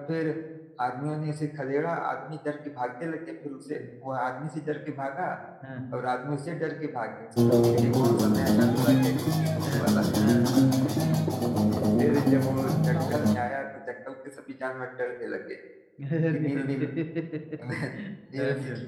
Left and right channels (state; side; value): identical; both; correlation 1.00